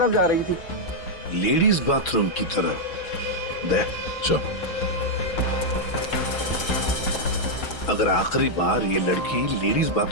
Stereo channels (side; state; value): right; late; 6.0 ms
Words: जा रही थी। लेडीज बाथरूम की तरफ? दे चल। अगर आखिरी बार ये लड़की लेडीज